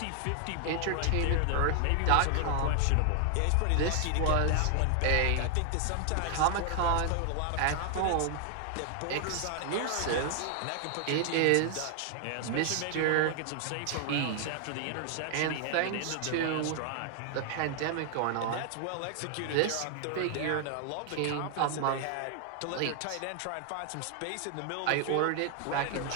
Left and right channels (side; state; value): both; different; correlation 0.00